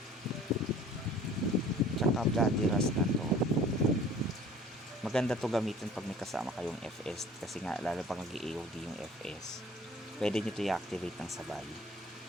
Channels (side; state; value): both; normal; correlation 0.49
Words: tsaka Bloody Rust na to, maganda to gamitin pag may kasama kayong FS kasi nga lalo pag nag-AOD yung FS, pwede nyo to i-activate ng sabay.